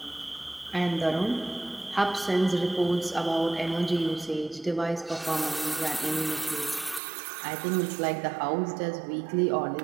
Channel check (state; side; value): drops out; left; at 7.0 s